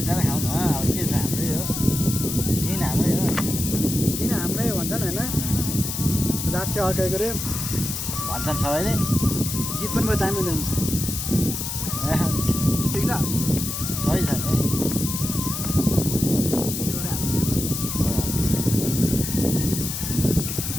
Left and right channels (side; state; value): left; noise; hiss, 4 dB below the sound